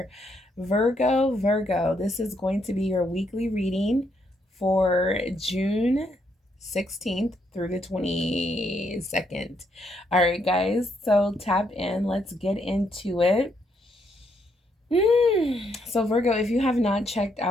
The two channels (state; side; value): normal; both; correlation 0.75